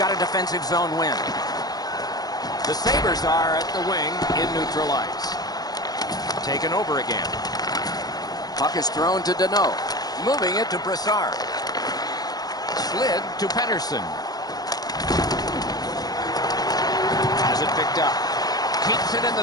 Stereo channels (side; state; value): right; late; 0.19 ms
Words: a defensive zone win. The Sabres are at the wing in neutral ice. Taken over again. Puck is thrown to Deneau. Moving it to Brassard. Slid to Pettersson. Has it picked up. Keeps it in